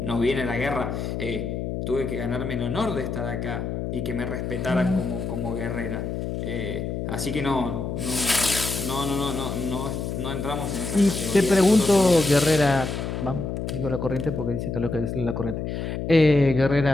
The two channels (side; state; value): left; noise; hum, 4 dB below the sound